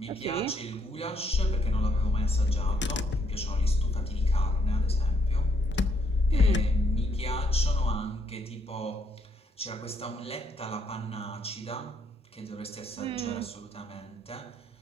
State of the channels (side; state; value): both; normal; correlation 0.70